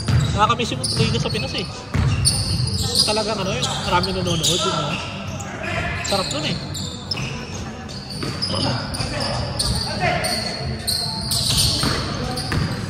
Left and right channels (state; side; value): identical; both; correlation 1.00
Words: Nakakamiss yung Liga sa Pinas eh. Talagang ano yun, marami nanonood yun. No? Sarap dun eh.